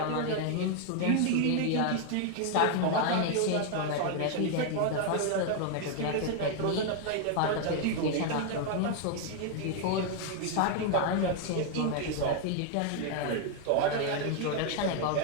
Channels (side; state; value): both; different; correlation 0.00